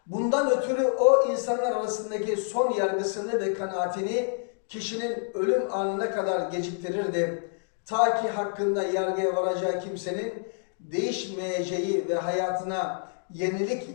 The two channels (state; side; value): silent; right; digital silence